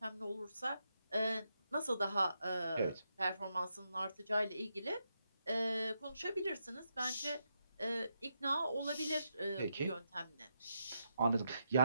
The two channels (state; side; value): inverted; both; correlation -0.83